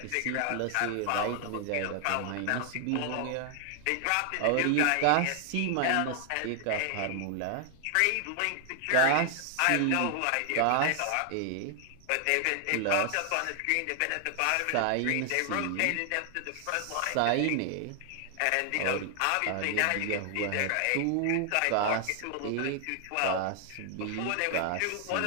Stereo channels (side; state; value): both; different; correlation 0.00